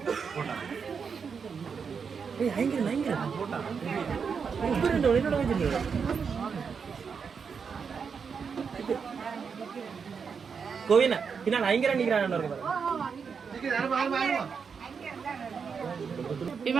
கோவினா பின்னால் ஐங்கரா நிக்கிறான்.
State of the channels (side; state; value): left; quieter; 6.0 dB